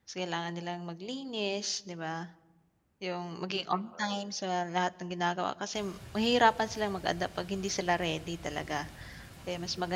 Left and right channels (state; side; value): identical; both; correlation 1.00